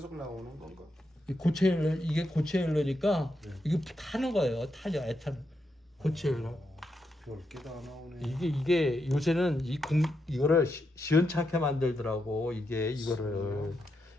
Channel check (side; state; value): both; normal; correlation 0.83